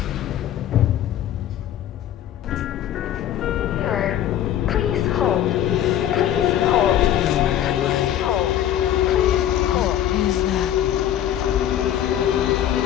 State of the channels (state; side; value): quieter; right; 11.3 dB